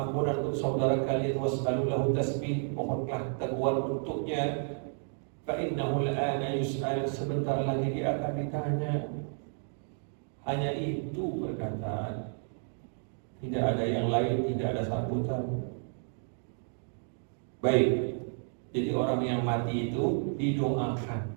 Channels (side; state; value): left; silent; 57 dB below the other